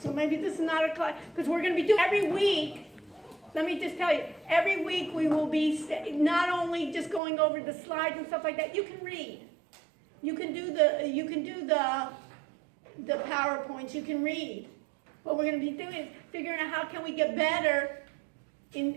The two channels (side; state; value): left; drops out; at 7.2 s